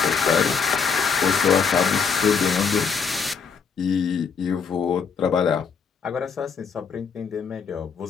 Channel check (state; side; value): quieter; right; 6.1 dB